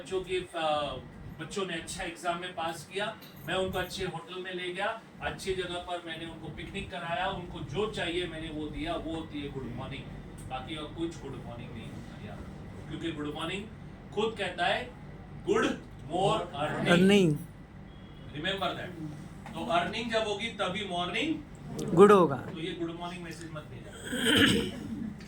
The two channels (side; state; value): both; identical; correlation 1.00